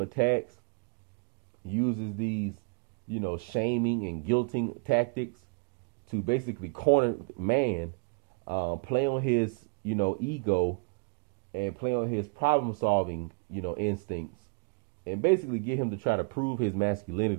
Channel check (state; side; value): quieter; left; 32.9 dB